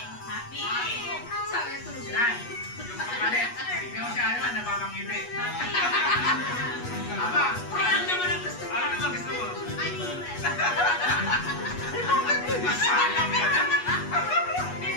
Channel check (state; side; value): late; right; 8.3 ms